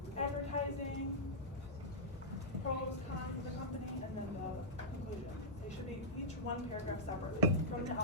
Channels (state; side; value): normal; both; correlation -0.12